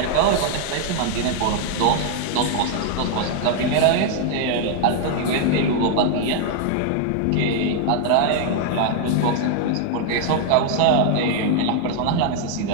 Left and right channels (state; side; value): different; both; correlation 0.00